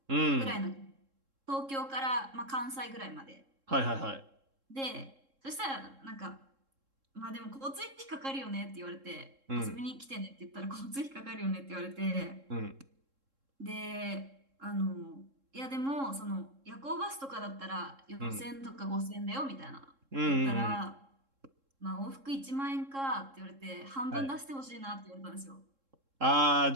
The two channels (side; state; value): left; late; 3.7 ms